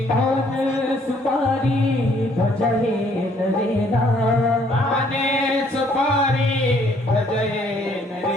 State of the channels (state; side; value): normal; both; correlation 0.64